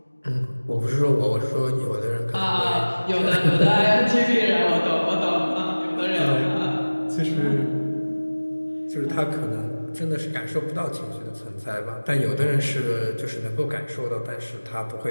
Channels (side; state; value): both; inverted; correlation -1.00